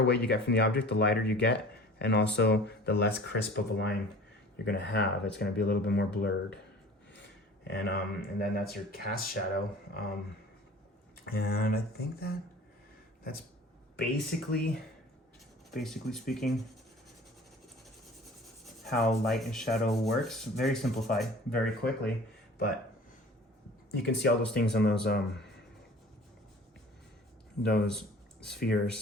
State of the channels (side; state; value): both; normal; correlation 0.45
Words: you get from the object, the lighter you get, and also the less crisp of a line you're going to have. It's going to be a little bit more blurred. And then that's your cast shadow. And I think that's basically speaking, how light and shadow works. Very simplified, very quickly, but you can see all those things on those